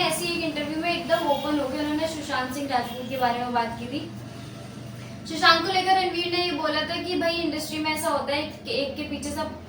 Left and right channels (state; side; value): identical; both; correlation 1.00